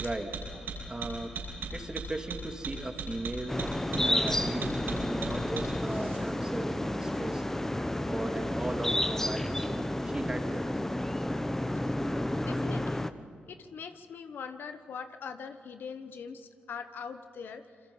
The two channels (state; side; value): normal; both; correlation 0.90